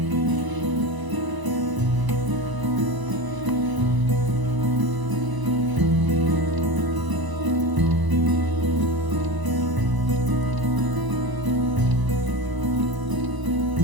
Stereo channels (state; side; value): late; left; 1.0 ms